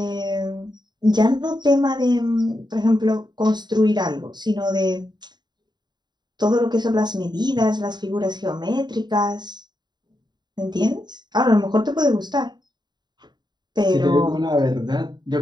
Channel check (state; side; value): late; left; 0.21 ms